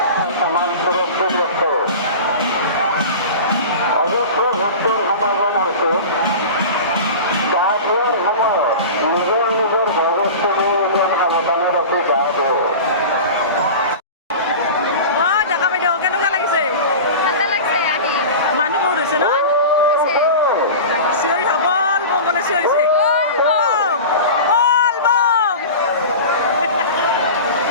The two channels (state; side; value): inverted; both; correlation -0.32